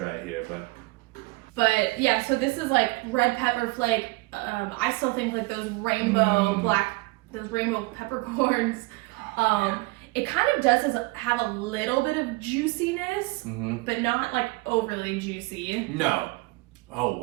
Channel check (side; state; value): left; quieter; 23.9 dB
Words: it here, But yeah, so this is like red pepper flake. I still think like those rainbow peppercorns. It kind of does have a little bit of juiciness, but not like overly juicy. No. Oh